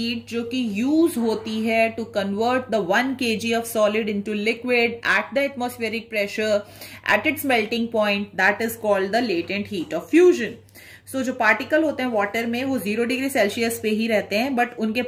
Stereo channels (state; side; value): identical; both; correlation 1.00